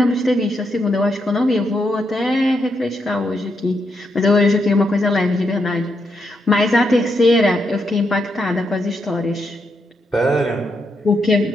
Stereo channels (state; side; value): normal; both; correlation 0.81